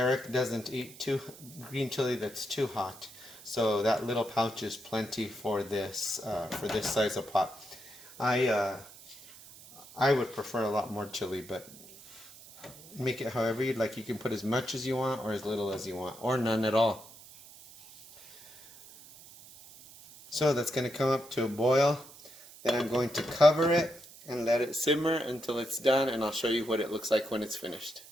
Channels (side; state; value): right; noise; hiss, 19 dB below the sound